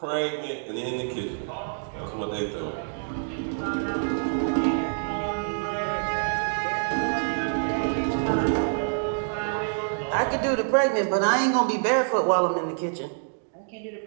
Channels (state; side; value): silent; left; digital silence